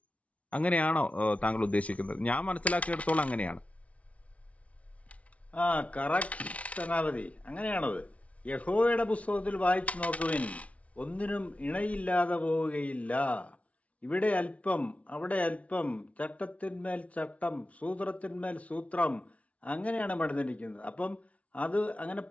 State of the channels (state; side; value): late; right; 0.065 ms